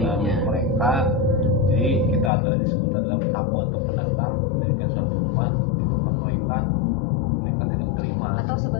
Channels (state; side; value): drops out; right; at 2.3 s